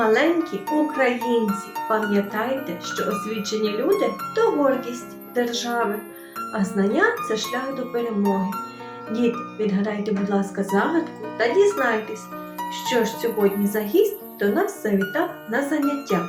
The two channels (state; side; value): identical; both; correlation 1.00